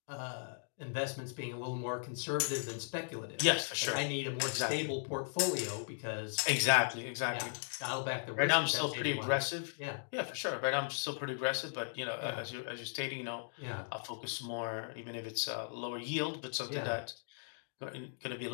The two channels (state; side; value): silent; right; digital silence